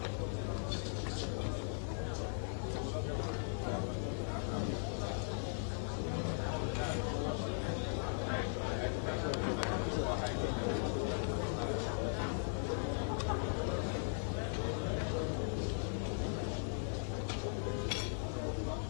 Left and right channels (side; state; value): right; silent; 52 dB below the other